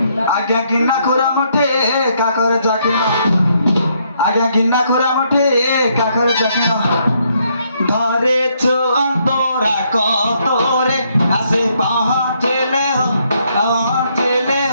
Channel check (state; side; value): inverted; both; correlation -0.72